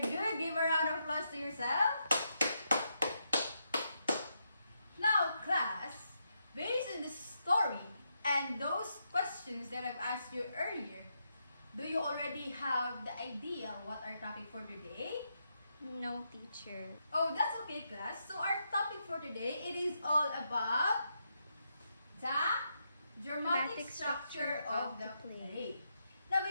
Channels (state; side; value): inverted; both; correlation -0.81